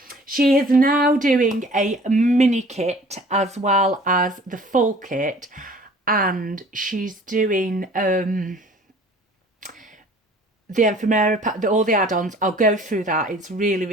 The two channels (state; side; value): normal; both; correlation 0.50